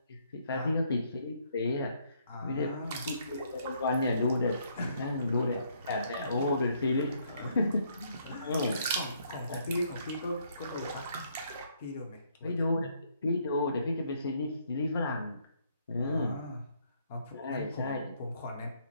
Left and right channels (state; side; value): inverted; both; correlation -0.69